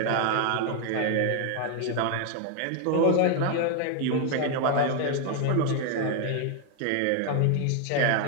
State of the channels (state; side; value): different; both; correlation 0.01